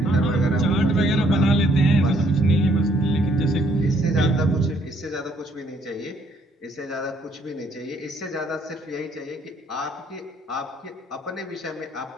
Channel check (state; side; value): normal; both; correlation 0.66